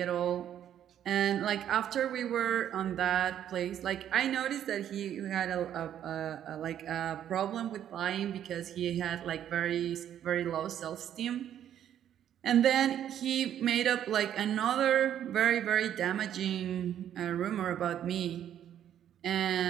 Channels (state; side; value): quieter; left; 10.3 dB